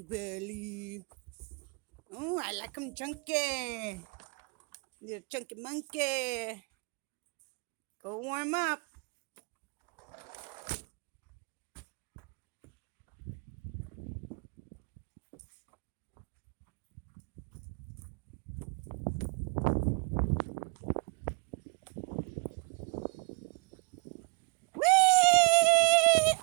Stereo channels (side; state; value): left; quieter; 33.7 dB